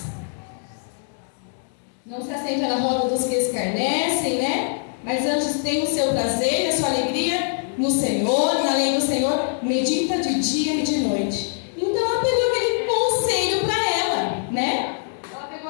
Não se assenta na roda dos que escarnecem, né? Mas antes tem o seu prazer, a sua alegria no Senhor, na lei do Senhor, medita de dia e de noite. Então ela pegou aquele conselho para ela, né? Ela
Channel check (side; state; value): right; silent; digital silence